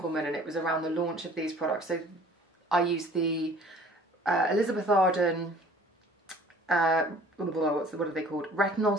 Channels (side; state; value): both; normal; correlation 0.51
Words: and it was around the launch of these products, so I used the Elizabeth Arden, what are they called? Retinol